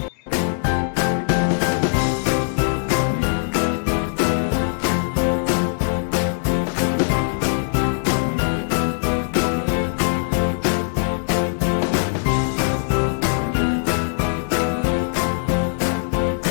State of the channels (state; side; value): silent; right; digital silence